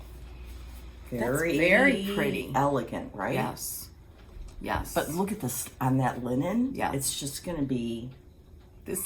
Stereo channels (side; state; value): both; identical; correlation 1.00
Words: Very, very pretty. Elegant, right? Yes. Yes. But look at this on that linen. Yeah. It's just going to be...